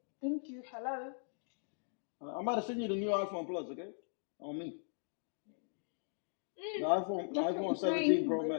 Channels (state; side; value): silent; right; digital silence